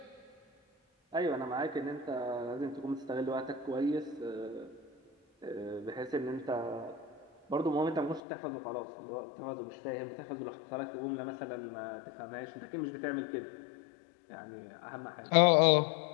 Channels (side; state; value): right; drops out; at 8.2 s